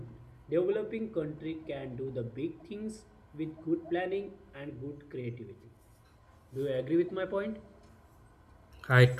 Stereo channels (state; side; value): identical; both; correlation 1.00